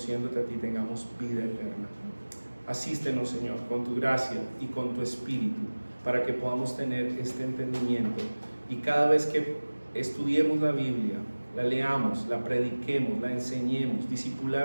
a ti tengamos vida eterna. Asístenos, Señor, con tu gracia y con tu Espíritu, para que podamos tener este entendimiento, y cada vez que estudiemos la Biblia, la leamos, la prediquemos, la enseñemos,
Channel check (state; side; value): inverted; both; correlation -1.00